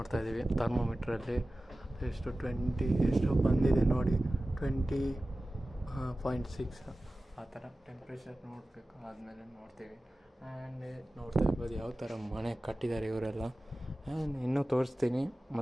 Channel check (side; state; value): both; normal; correlation 0.96